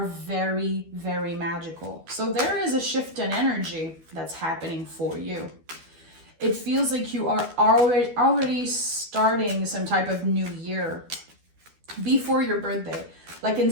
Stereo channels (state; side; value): late; left; 12 ms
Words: very, very magical. So there is a shift in energy that's happening for you. It feels like you are already starting some type of new year before your birthday. Like,